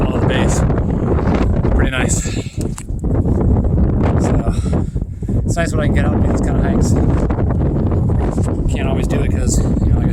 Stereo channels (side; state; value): both; identical; correlation 1.00